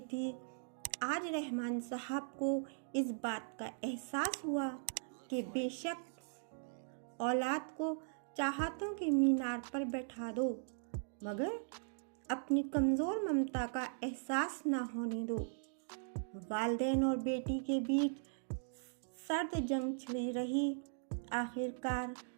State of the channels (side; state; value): left; silent; digital silence